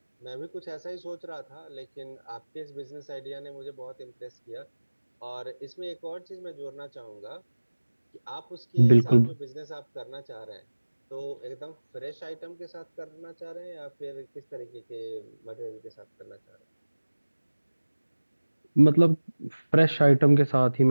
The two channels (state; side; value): inverted; both; correlation -1.00